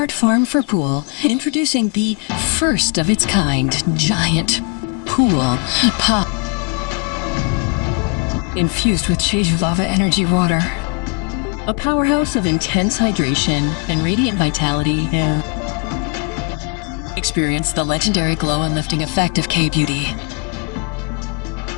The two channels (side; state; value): right; quieter; 34.5 dB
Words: farm for pool, introducing the first of its kind giant pool pop, infused with Jeju lava energy water. A powerhouse of intense hydration and radiant vitality. Experience the legendary glow and lifting effect of K-Beauty.